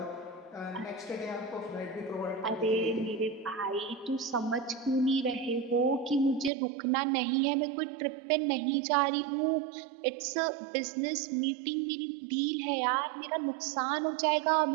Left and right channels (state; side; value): drops out; left; at 6.5 s